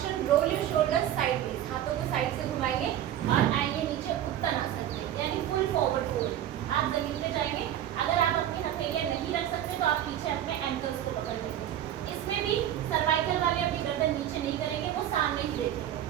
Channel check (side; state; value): left; quieter; 11.4 dB